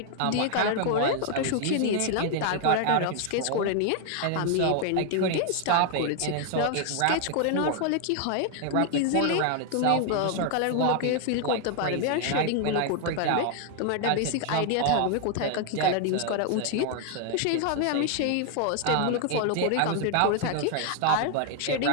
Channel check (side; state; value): both; different; correlation 0.00